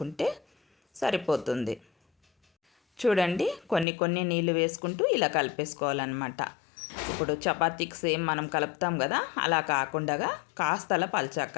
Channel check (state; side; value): drops out; right; at 3.9 s